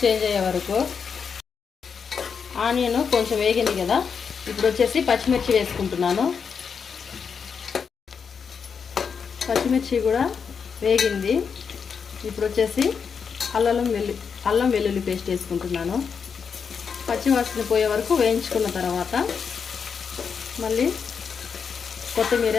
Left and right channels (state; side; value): quieter; right; 6.2 dB